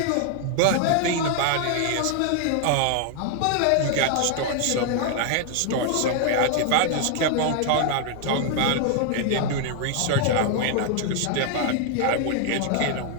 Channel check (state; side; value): different; both; correlation 0.00